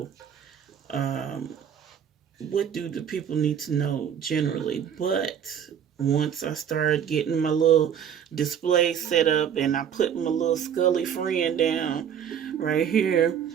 What do the people need to know generally? But once I started getting my little display set up and I put my little Scully friend down right here,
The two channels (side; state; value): left; quieter; 8.5 dB